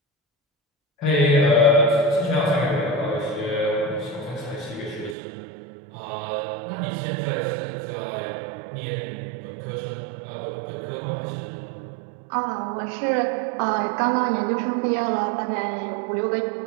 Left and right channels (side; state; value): left; drops out; at 5.2 s